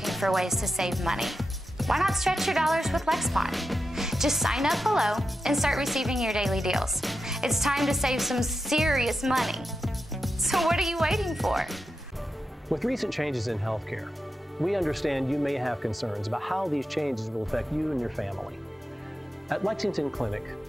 for ways to save money. Why not stretch your dollars with Lexpon? Just sign up below and start receiving your daily deals. It's time to save some serious money. So what are you waiting for? With recent changes in healthcare, we understand you may have concerns about how these changes will affect you and your family. At Lexington Clinic,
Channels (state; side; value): normal; both; correlation 0.89